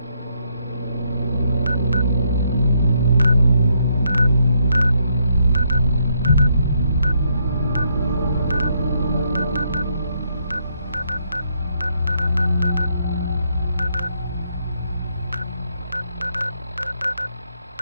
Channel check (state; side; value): inverted; both; correlation -0.75